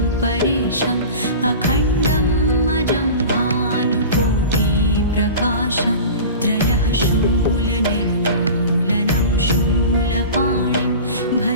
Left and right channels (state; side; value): inverted; both; correlation -0.35